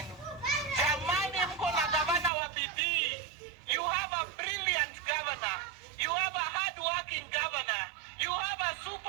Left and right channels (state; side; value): drops out; left; at 2.3 s